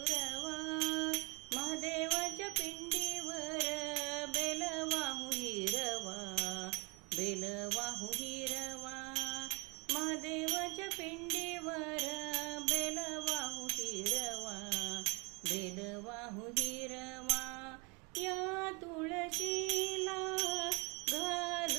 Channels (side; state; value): left; quieter; 29.6 dB